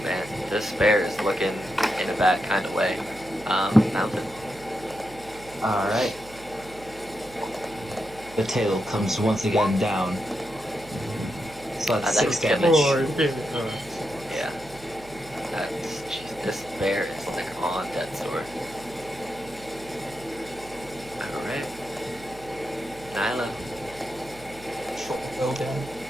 man, this bear is looking in a bad kind of way. Mountain. Alright. The tail comes once again down. So that's That 6 could kill damage. Yeah. Jeez, this bear is like on death's door. Alright. Nyla. Short bow down.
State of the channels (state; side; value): noise; right; hum, 19 dB below the sound